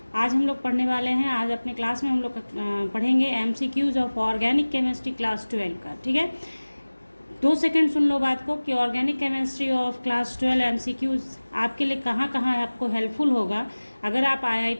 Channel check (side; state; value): both; inverted; correlation -1.00